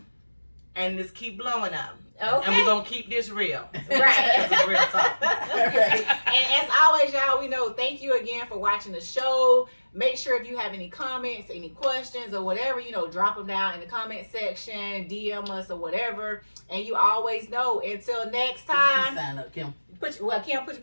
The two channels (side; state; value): both; inverted; correlation -1.00